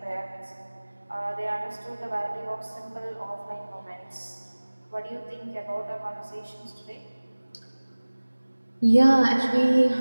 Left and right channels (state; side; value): inverted; both; correlation -1.00